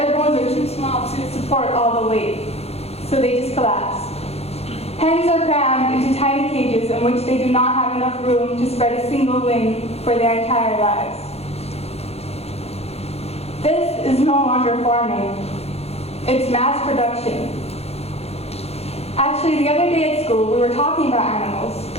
bones are too small to support all the weight, so they just collapse. Hens are crammed into tiny cages in which they do not have enough room to spread a single wing for their entire lives. This is no longer farming. It's mass production. Actually, the other day at school, we were talking about animals.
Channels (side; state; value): right; late; 0.30 ms